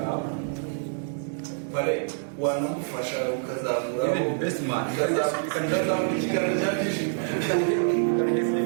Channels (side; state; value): left; silent; 61 dB below the other